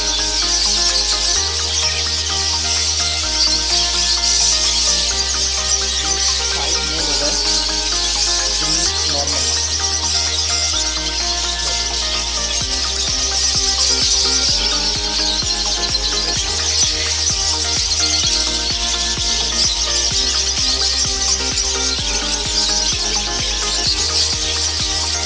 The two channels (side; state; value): both; identical; correlation 1.00